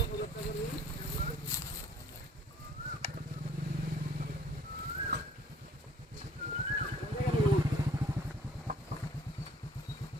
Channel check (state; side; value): normal; both; correlation 0.56